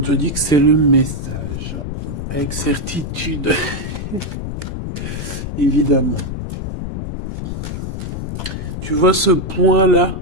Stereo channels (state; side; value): noise; left; rumble, 6 dB below the sound